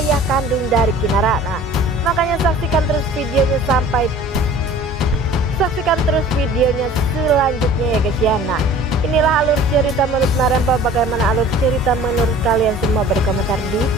kandung dari Kinara. Nah, makanya saksikan terus videonya selanjutnya ya guys ya. Nah, inilah alur cerita menurut Marempong. Bagaimana alur cerita menurut kalian semua? Beri komentar di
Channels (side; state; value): both; normal; correlation 0.46